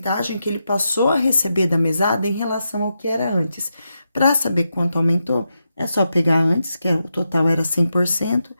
que ele passou a receber da mesada em relação ao que era antes. Para saber quanto aumentou, é só pegar antes, que o total era 100%,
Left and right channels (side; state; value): both; inverted; correlation -0.86